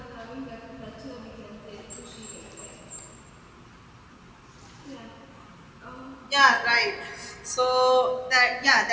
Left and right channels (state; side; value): identical; both; correlation 1.00